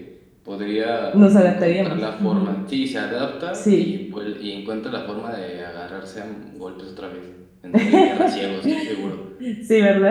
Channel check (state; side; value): identical; both; correlation 1.00